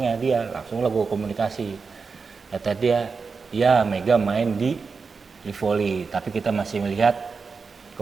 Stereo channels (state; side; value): quieter; left; 4.9 dB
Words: dia, langsung lah gue komunikasi. Kata dia, ya Mega main di Livoli, tapi kita masih melihat